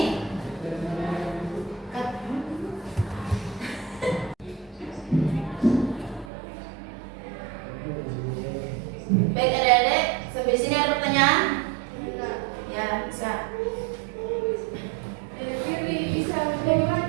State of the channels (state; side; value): drops out; left; at 6.3 s